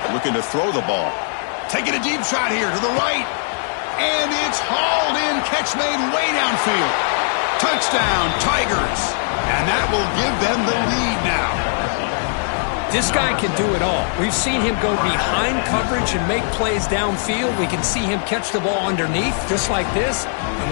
Looking to throw the ball. Taking a deep shot here to the right. And it's hauled in. Catch made way downfield. Touchdown, Tigers. And that will give them the lead now. This guy can do it all. We've seen him go behind coverage and make plays downfield. We can see him catch the ball underneath, just like this. And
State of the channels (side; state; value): right; silent; 66 dB below the other